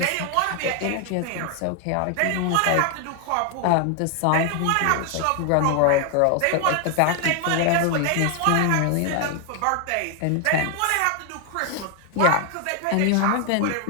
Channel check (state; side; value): different; both; correlation 0.00